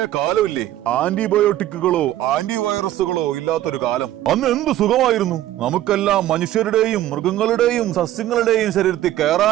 കാലമില്ലേ, ആന്റിബയോട്ടിക്കുകളോ ആന്റിവൈറസുകളോ ഇല്ലാത്തൊരു കാലം. അന്ന് എന്ത് സുഖമായിരുന്നു. നമുക്കെല്ലാം മനുഷ്യരുടെയും മൃഗങ്ങളുടെയും സസ്യങ്ങളുടെയും ശരീരത്തിൽ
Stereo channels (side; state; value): left; quieter; 13.6 dB